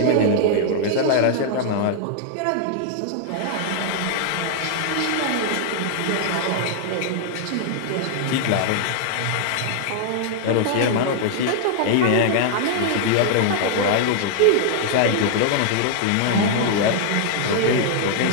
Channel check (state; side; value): different; both; correlation 0.00